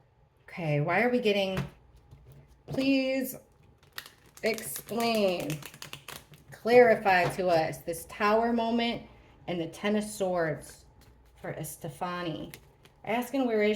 Okay, why are we getting... Please explain. Clarify to us this Tower moment and the Ten of Swords for Estefani. Asking where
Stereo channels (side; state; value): both; identical; correlation 1.00